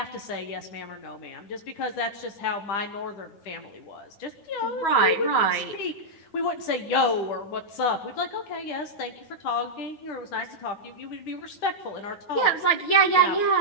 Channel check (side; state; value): right; late; 9.3 ms